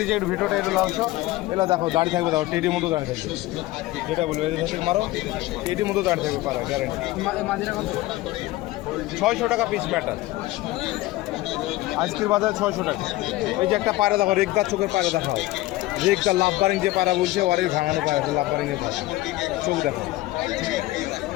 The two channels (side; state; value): right; quieter; 17.8 dB